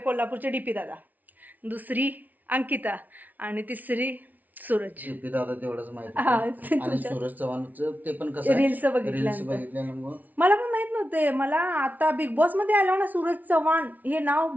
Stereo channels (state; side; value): late; left; 0.078 ms